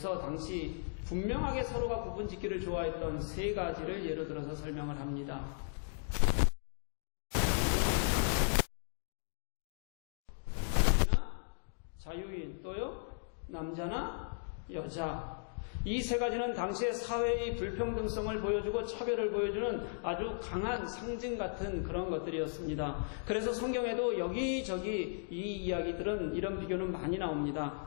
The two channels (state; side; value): silent; right; digital silence